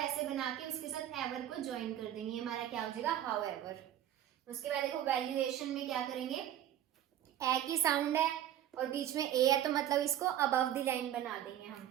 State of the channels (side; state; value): left; quieter; 11.5 dB